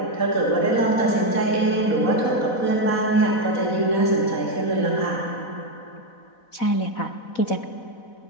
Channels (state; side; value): late; right; 4.1 ms